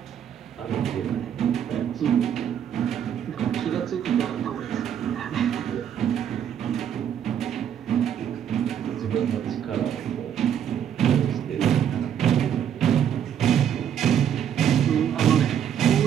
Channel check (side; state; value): left; quieter; 9.2 dB